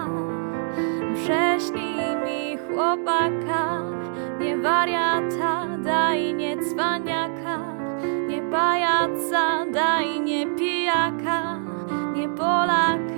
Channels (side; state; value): left; silent; 63 dB below the other